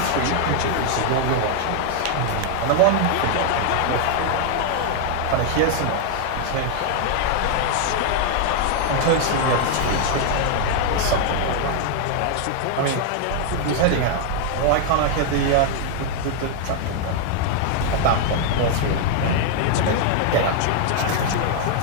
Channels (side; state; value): both; different; correlation 0.00